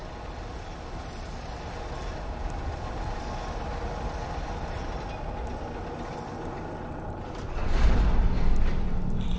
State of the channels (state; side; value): identical; both; correlation 1.00